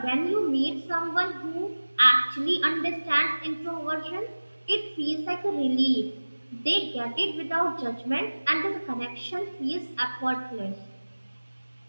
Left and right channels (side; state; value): both; inverted; correlation -1.00